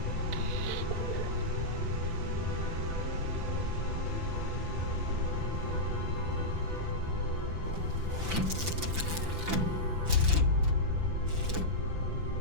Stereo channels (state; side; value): late; left; 5.9 ms